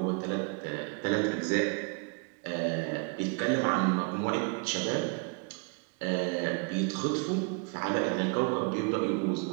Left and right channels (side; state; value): left; quieter; 34.9 dB